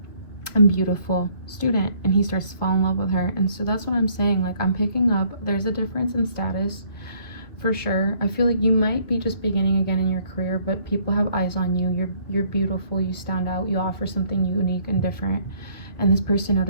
and beautiful student, and he starts to fall in love with her. And so that's what I'm saying, like, I'm picking up there's a difference in status for sure. I feel like you might be just beginning again in your career, but people have eyes on you. You're beautiful, you stand out, you offer something unique and different, and this person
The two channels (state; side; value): late; right; 2.1 ms